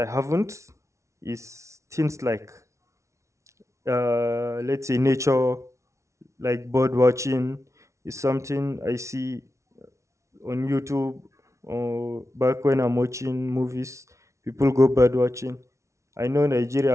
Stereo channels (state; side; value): late; left; 0.14 ms